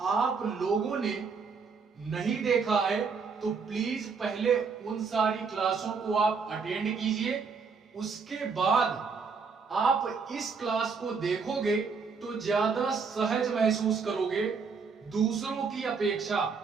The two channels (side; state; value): left; quieter; 5.3 dB